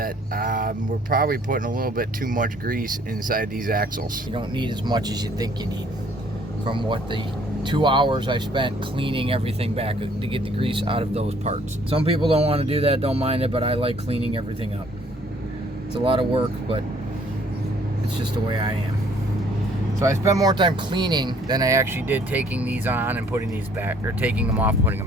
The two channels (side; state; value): both; normal; correlation 0.60